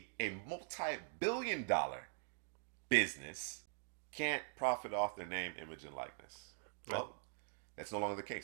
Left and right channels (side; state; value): left; silent; digital silence